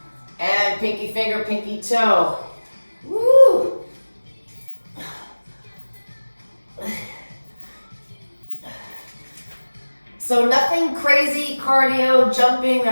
And pinky finger, pinky toe. Woo! So nothing crazy cardio, jumping,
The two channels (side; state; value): both; inverted; correlation -1.00